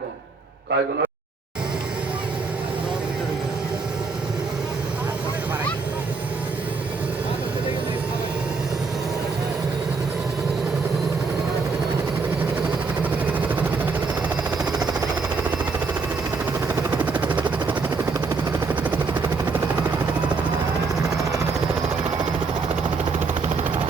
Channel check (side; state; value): left; quieter; 4.5 dB